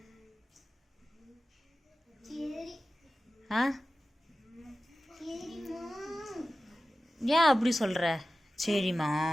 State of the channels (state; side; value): normal; both; correlation 0.95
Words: ஆ ஏன் அப்படி சொல்கிற?